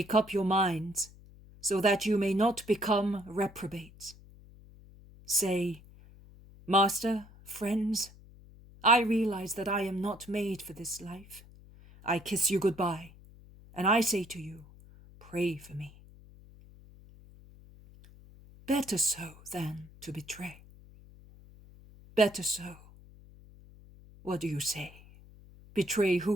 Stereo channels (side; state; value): left; noise; hum, 22 dB below the sound